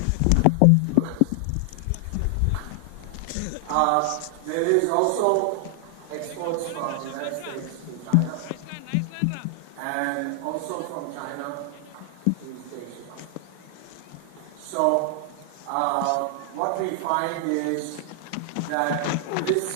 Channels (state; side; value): different; both; correlation 0.00